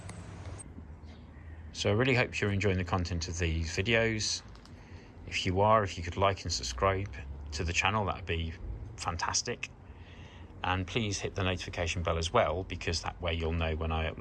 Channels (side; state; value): both; identical; correlation 1.00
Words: So I really hope you're enjoying the content of these videos. If you are, if you could like and subscribe to the channel, that would be fantastic. And please hit the notification bell as well, because that way you'll know when I